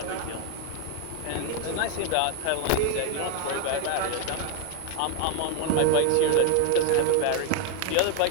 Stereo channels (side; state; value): both; different; correlation 0.01